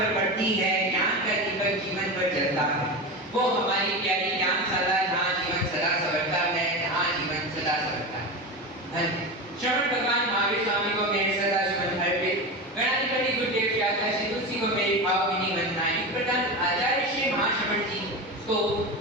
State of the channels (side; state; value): both; normal; correlation 0.23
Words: पड़ती है, ज्ञान का दीपक जीवन पर जलता है। वो हमारी प्यारी ज्ञानशाला जहाँ जीवन सदा संवरता है, जहाँ जीवन सदा संवरता है। श्रवण भगवान महावीर स्वामी को मेरे सदा सुमन अर्पित, गणाधिपति गुरुदेव व्यासा श्री तुलसी को मेरी भावभीनी वंदनाएं, प्रधान आचार्य श्री महाश्रवण जी को